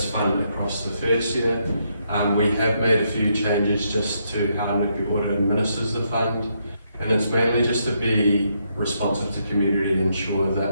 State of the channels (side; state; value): both; inverted; correlation -0.77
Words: fund across the first year, We have made a few changes just to how Nuku Ora administers the fund, and it's mainly just to be responsive to community and ensure